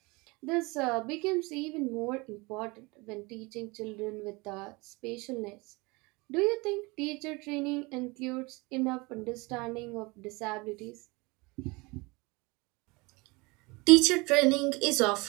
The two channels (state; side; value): quieter; left; 25.6 dB